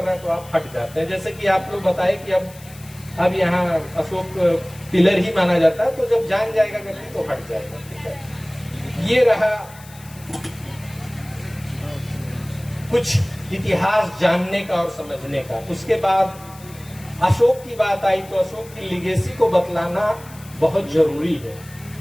रहा है तो आप हट जाते हैं। जैसे कि आप लोग बताए कि अब यहाँ अशोक पिलर ही माना जाता है, तो जब जान जाएगा व्यक्ति तो हट जाएगा। ठीक है, ये रहा कुछ इतिहास जानने का और समझने का। उसके बाद अशोक की बात आई तो अशोक की लिगेसी को बतलाना बहुत जरूरी है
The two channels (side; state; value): left; noise; hiss, 21 dB below the sound